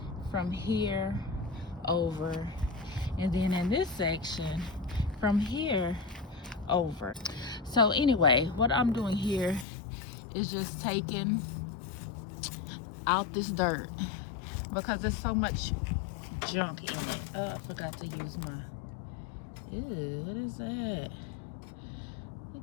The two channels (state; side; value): drops out; right; at 9.7 s